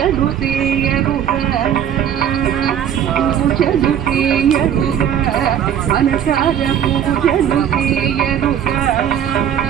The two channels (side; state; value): left; quieter; 9.3 dB